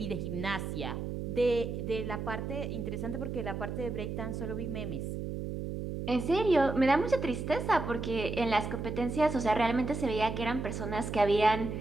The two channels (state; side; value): noise; right; hum, 5 dB below the sound